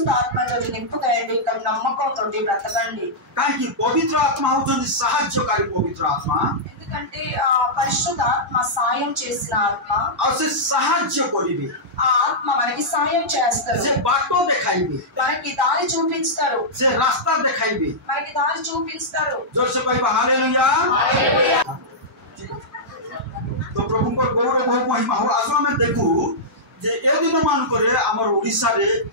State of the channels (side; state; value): both; normal; correlation -0.11